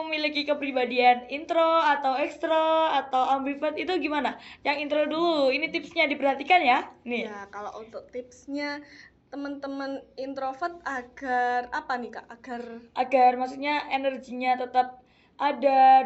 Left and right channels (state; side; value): identical; both; correlation 1.00